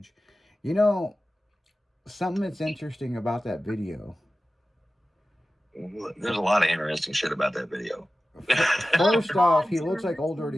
You know, something that's interesting about that video. There's a lot of interesting shit about that video. First off, he looks like Old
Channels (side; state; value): both; normal; correlation 0.95